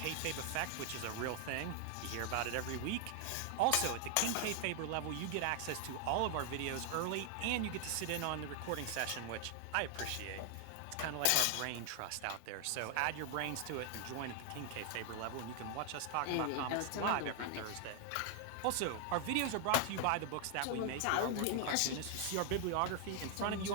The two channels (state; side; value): different; both; correlation 0.00